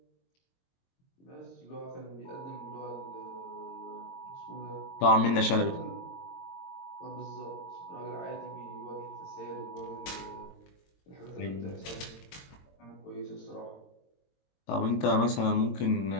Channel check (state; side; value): late; right; 22 ms